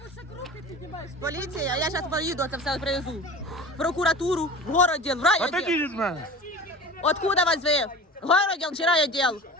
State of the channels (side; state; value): both; normal; correlation 0.38